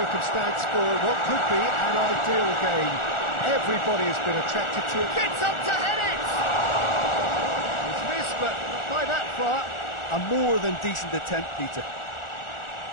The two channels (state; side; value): late; right; 1.4 ms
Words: for what could be an ideal game. Everybody has been attracted to it. Gets up to head it! It's missed, but not by that far. A more than decent attempt, Peter.